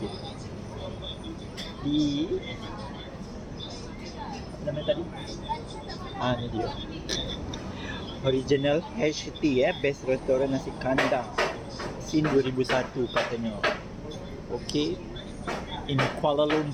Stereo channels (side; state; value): both; identical; correlation 1.00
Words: Apa nama tadi? Ni dia. Original HT, Best Restoran Nasi Kandang. Sin 2001 katanya. Okay. In Kuala